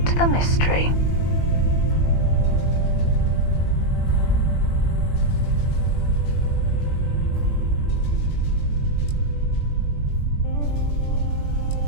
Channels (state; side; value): late; right; 21 ms